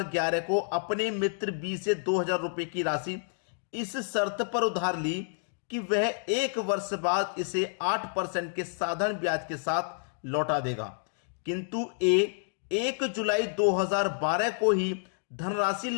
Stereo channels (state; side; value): silent; right; digital silence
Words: को अपने मित्र बी से 2000 रुपए की राशि इस शर्त पर उधार ली कि वह 1 वर्ष बाद इसे 8% के साधारण ब्याज के साथ लौटा देगा, किंतु ए 1 जुलाई 2012 को ही धनराशि